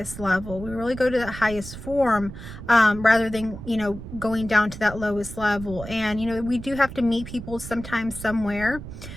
level. We really go to the highest form, rather than, you know, going down to that lowest level. And, you know, we do have to meet people sometimes somewhere,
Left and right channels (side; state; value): right; noise; rumble, 12 dB below the sound